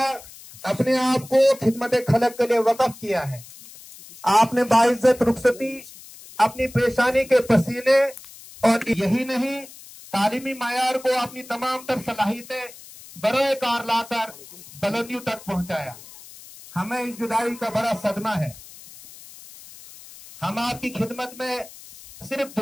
अपने आप को खिदमत खलक के लिए वक़्फ किया है। आपने बाइज्जत रुखसती अपनी पेशानी के पसीने और यही नहीं तालीमी मायार को अपनी तमाम तर सलाहियतें बरोए कार लाकर बुलंदियों तक पहुंचाया। हमें इस जुदाई का बड़ा सदमा है। हम आपकी खिदमत में सिर्फ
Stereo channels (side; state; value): left; noise; hiss, 18 dB below the sound